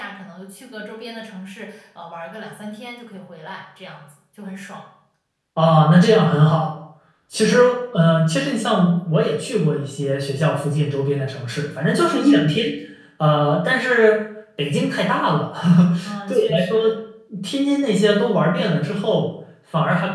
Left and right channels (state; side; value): identical; both; correlation 1.00